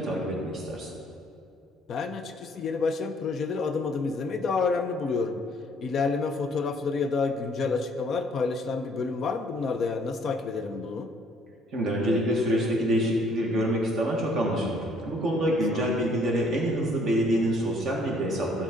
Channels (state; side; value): normal; both; correlation 0.62